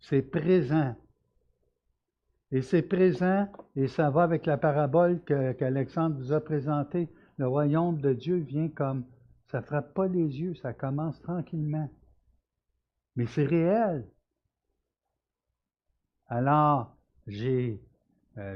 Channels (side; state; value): both; identical; correlation 1.00